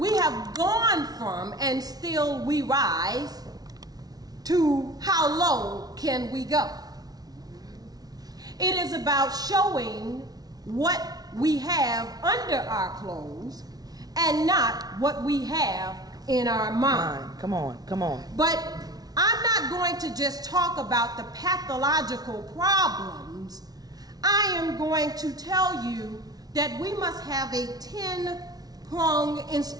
have gone from, and still we rise, to how low can we go? It is about showing what we have under our clothes and not what we have in our mind. Come on, come on. But I'm not going to just talk about the pathological problems. I am going to tell you that we must have a 10-pronged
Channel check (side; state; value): left; late; 0.19 ms